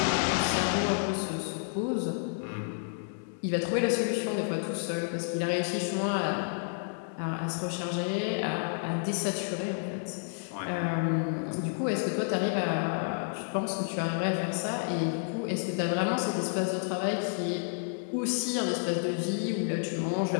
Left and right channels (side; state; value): right; silent; digital silence